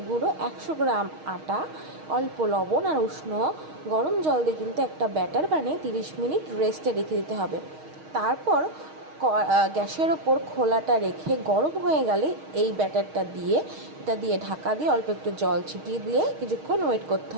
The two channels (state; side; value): late; left; 6.4 ms